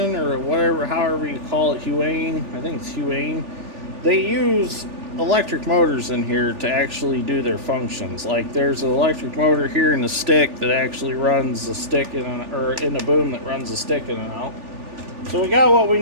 or whatever, however you call it, Huion, I think it's Huion, they use electric motors in here to actually do their functions. Like there's an electric motor here in the stick that actually runs the stick or in the boom that runs the stick in and out. So we got what we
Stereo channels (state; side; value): late; left; 3.4 ms